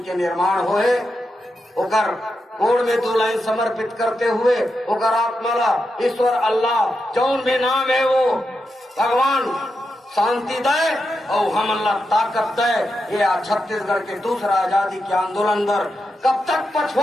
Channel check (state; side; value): normal; both; correlation 0.87